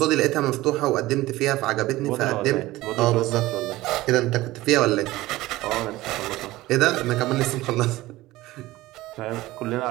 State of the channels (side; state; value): left; quieter; 17.8 dB